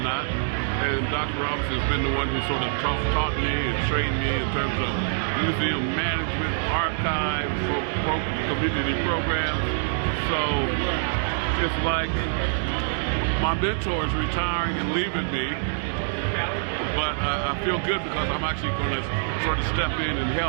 not. And Dr. Robinson has been the one who sort of taught me and trained me in terms of museum management, archives, community programs. So it's like my mentor is retiring and leaving me, but I feel good because I'm actually going to sort of step in and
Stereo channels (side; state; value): left; silent; 62 dB below the other